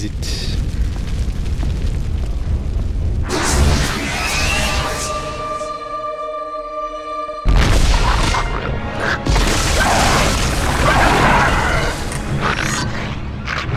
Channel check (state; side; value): identical; both; correlation 1.00